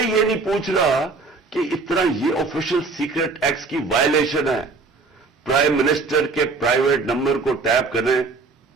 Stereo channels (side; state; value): left; quieter; 4.1 dB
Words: یہ نہیں پوچھ رہا کہ اتنا یہ آفیشل سیکرٹ ایکٹ کی وائلیشن ہے. پرائم منسٹر کے پرائیویٹ نمبر کو ٹیپ کریں